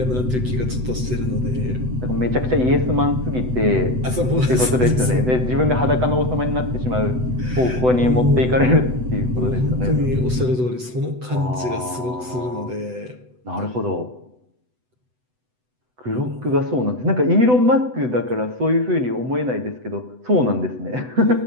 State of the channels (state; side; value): late; left; 8.0 ms